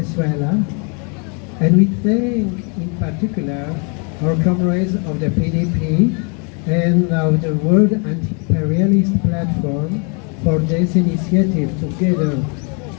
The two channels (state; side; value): quieter; right; 36.1 dB